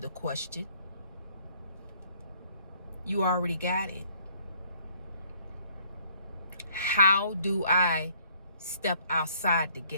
question, you already got it. How do I step outside the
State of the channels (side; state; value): both; inverted; correlation -0.63